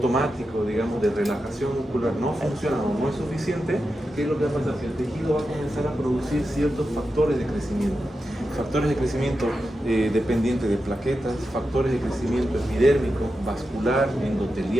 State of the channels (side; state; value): both; normal; correlation 0.90